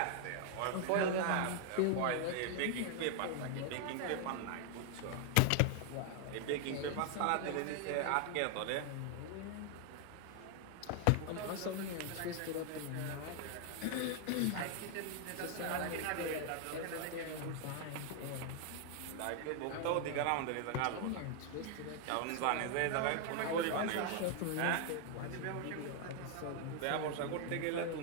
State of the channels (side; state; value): both; different; correlation 0.00